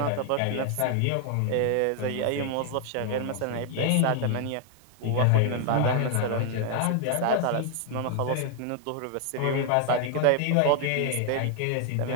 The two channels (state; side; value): different; both; correlation 0.00